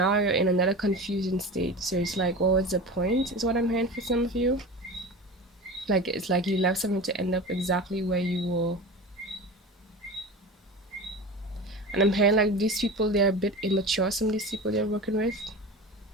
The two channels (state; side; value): normal; both; correlation 0.31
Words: you're in another confusion state. So it's like, what was the point? Is what I'm hearing for some of you. Like it's like you left something to end up exactly where you were. And I'm hearing like these people, they're a bit immature, some of these people they're working with.